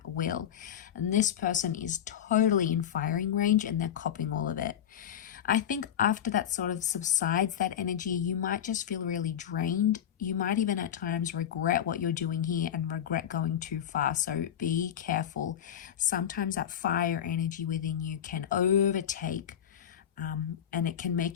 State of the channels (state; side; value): quieter; right; 9.6 dB